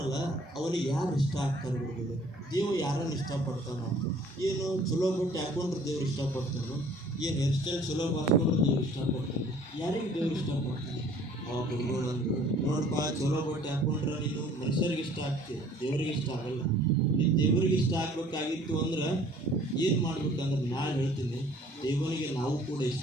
ಅವನಿಗೆ ಯಾರು ಇಷ್ಟ ಆಗ್ತಾರೆ ಗುರುಗಳು? ದೇವ್ರು ಯಾರನ್ನು ಇಷ್ಟಪಡ್ತಾನೋ? ಏನು ಚಲೋ ಬಟ್ಟೆ ಹಾಕೊಂಡ್ರೆ ದೇವ್ರು ಇಷ್ಟಪಡ್ತಾನೋ? ಏನು ಹೇರ್ ಸ್ಟೈಲ್ ಚಲೋ ಹಾಕೊಂಡ್ರೆ ದೇವ್ರು ಇಷ್ಟಪಡ್ತಾನೆ? ಯಾರಿಗೆ ದೇವ್ರು ಇಷ್ಟಪಡ್ತಾನೆ? ಅವಾಗ ಗುರುಗಳು ಅಂದರು, ನೋಡಪ್ಪ, ಚಲೋ ಬಟ್ಟೆ ಹಾಕೊಂಡ್ರೆ ನೀನು ಮನುಷ್ಯರಿಗೆ ಇಷ್ಟ ಆಗ್ತೀವಿ, ದೇವ್ರಿಗೆ ಇಷ್ಟ ಆಗಲ್ಲ. ನೀನು ದೇವರಿಗೆ ಇಷ್ಟ ಆಗ್ಬೇಕಾಗಿತ್ತು ಅಂದ್ರೆ ಏನು ಮಾಡ್ಬೇಕಂದ್ರೆ ನಾನು ಹೇಳ್ತೀನಿ, ದೇವನಿಗೆ ನಾವು ಕೂಡ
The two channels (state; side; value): normal; both; correlation 0.54